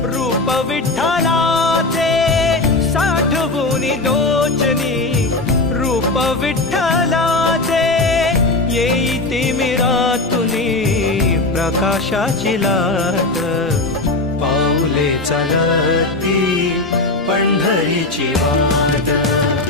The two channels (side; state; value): right; quieter; 3.0 dB